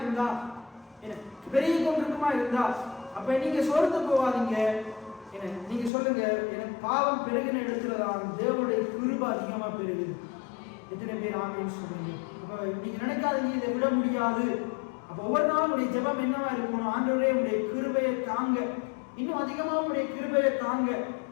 இருந்தா, அப்ப நீங்க சோர்ந்து போவாதீங்க. நீங்க சொல்லுங்க, எனக்கு பாவம் பெருகின இடத்துலதான் தேவனுடைய கிருபை அதிகமா பெருகுது. எத்தனை பேர் ஆமென் சொல்றீங்க? அப்ப நீங்க நினைக்காதீங்க இதை விட முடியாது. அப்ப ஒவ்வொரு நாளும் உடைய ஜெபம் என்னவா இருக்கணும்? ஆண்டவரே உடைய கிருபையை தாங்க, இன்னும் அதிகமா உடைய கிருபையை தாங்க.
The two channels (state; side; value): drops out; right; at 5.9 s